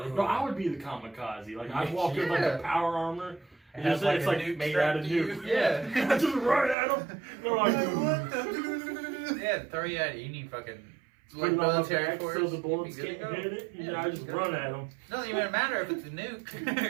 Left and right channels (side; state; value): left; drops out; at 6.8 s